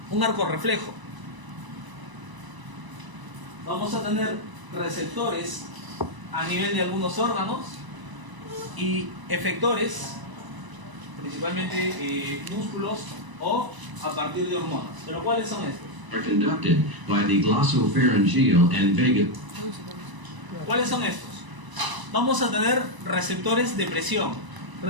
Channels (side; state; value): left; late; 1.0 ms